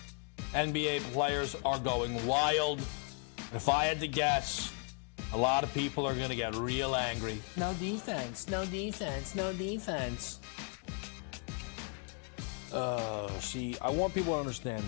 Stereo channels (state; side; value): quieter; right; 37.4 dB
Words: NBA players are going wild. If I had to guess, a lot of people are going to get real angry. No defense, no defense, no defense. See, I want people to understand